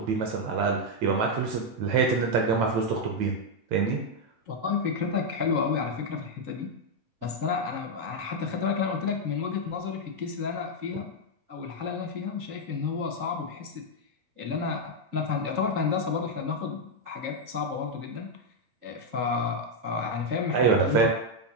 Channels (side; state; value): left; late; 9.0 ms